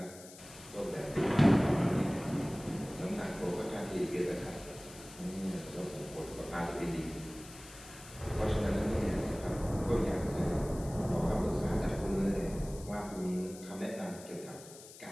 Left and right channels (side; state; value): left; noise; hiss, 17 dB below the sound